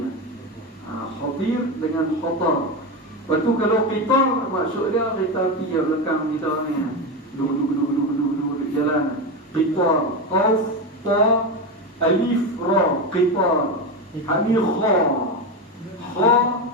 ya. Khatir dengan khatar. Lepas tu kalau qitar maksud dia kereta api yang belakang kita ni, duduk jalan. Qitar, qaf, ta, alif, ra, qitar. Ini kha, kha,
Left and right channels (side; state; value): both; normal; correlation 0.16